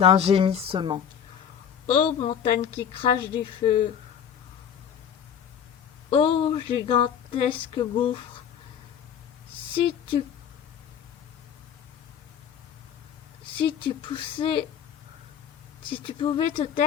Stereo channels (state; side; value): quieter; right; 8.4 dB